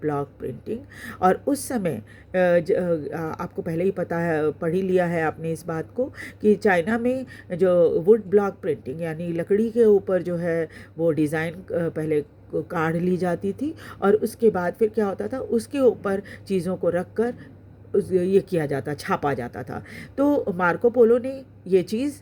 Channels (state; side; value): identical; both; correlation 1.00